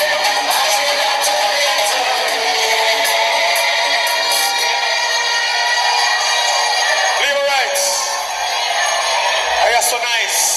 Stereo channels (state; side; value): identical; both; correlation 1.00